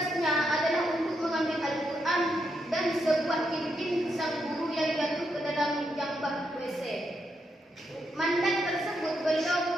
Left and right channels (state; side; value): normal; both; correlation 0.81